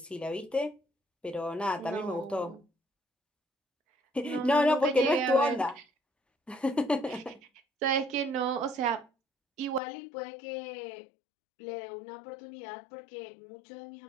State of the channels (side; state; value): right; drops out; at 9.8 s